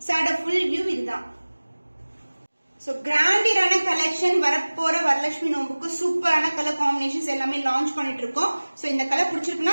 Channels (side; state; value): both; inverted; correlation -1.00